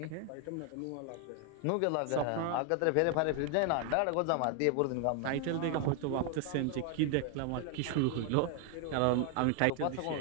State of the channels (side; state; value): both; different; correlation 0.01